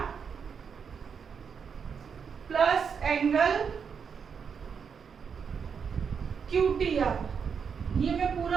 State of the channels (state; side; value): quieter; left; 6.5 dB